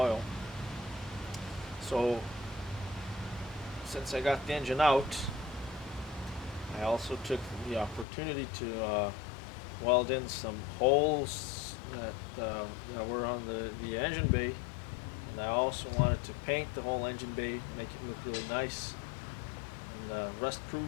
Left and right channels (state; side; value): drops out; right; at 8.1 s